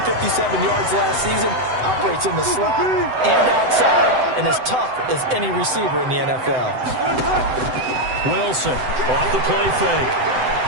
yards last season, operates in the slot and outside, and as tough as any receiver in the NFL. Wilson off the play fake.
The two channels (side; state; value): left; late; 7.9 ms